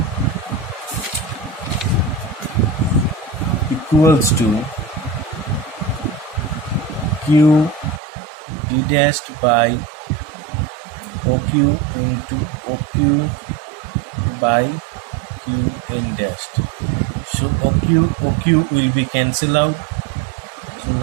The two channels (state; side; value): drops out; left; at 8.0 s